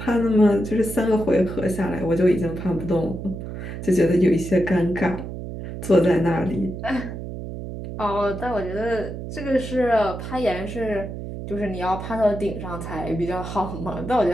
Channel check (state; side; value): noise; right; hum, 8 dB below the sound